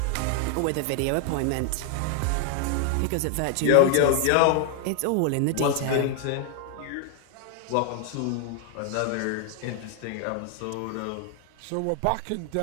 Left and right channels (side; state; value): both; different; correlation 0.00